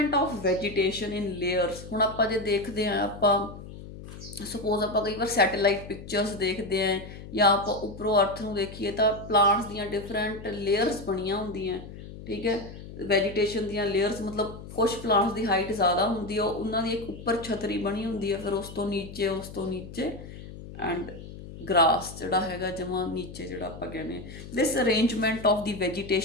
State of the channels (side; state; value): left; noise; hum, 13 dB below the sound